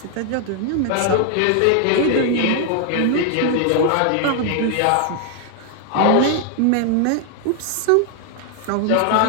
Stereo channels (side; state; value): both; different; correlation 0.00